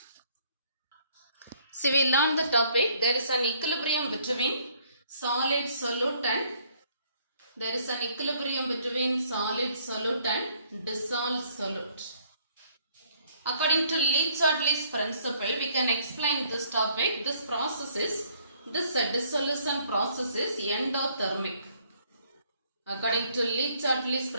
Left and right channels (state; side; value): inverted; both; correlation -0.64